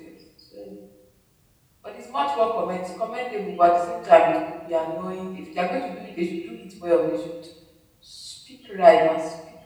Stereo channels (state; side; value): identical; both; correlation 1.00